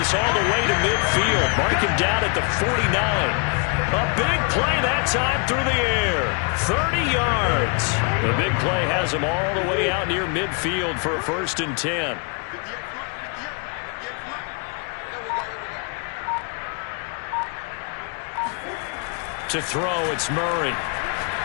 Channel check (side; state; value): right; quieter; 35.7 dB